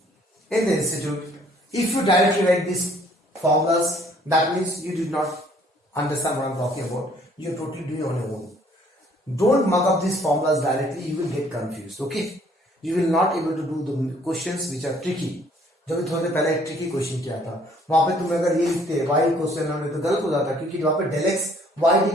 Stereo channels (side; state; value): both; normal; correlation 0.60